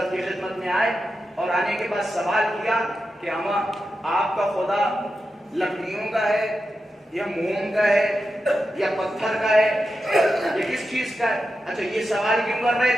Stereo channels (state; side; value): normal; both; correlation 0.89